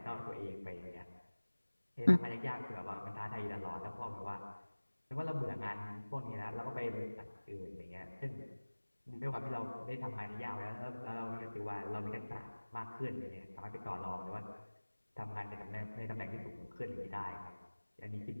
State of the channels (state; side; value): inverted; both; correlation -1.00